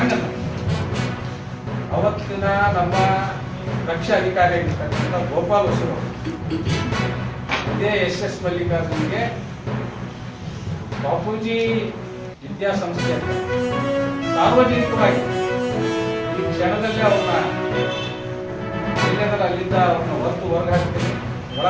ಅಲ್ಲ. ಅವತ್ತಿನ ನಮ್ಮ ರಕ್ಷಾ ಅಧಿಕಾರಿ ಆಗಿರ್ತಕ್ಕಂಥ ಗೋಪಾಲ್ ಹೊಸರು ಇದೇ SS ಮಲ್ಲಿಕಾರ್ಜುನ್ಗೆ ಬಾಪೂಜಿ ವಿದ್ಯಾಸಂಸ್ಥೆ ಅಂತ ಸಾರ್ವಜನಿಕವಾಗಿ ಈ ಕ್ಷಣದಲ್ಲೇ ಅವ್ರನ್ನ ಎಲ್ಲೆದರ ಅಲ್ಲಿಂದ ಅವ್ರನ್ನ ಹೊರಗೆ ಹಾಕ್ತೀನಿ,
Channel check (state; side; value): identical; both; correlation 1.00